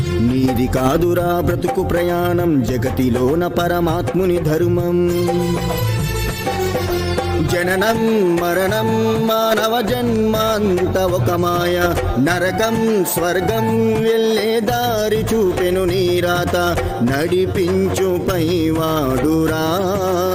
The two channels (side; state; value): both; identical; correlation 1.00